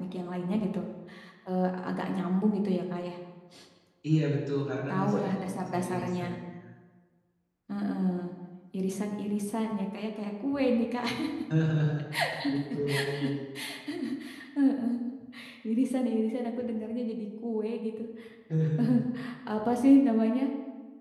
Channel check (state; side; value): identical; both; correlation 1.00